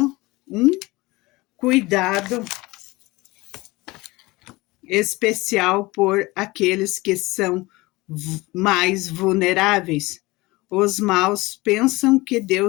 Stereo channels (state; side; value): quieter; right; 21.7 dB